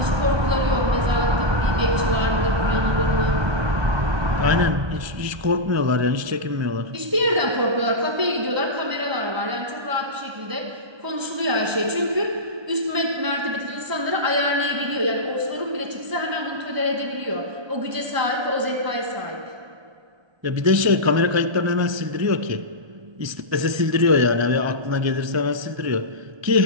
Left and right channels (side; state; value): left; late; 1.3 ms